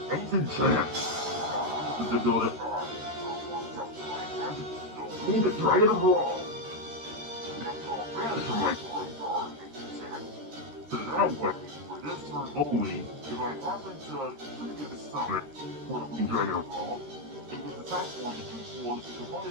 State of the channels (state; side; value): late; left; 13 ms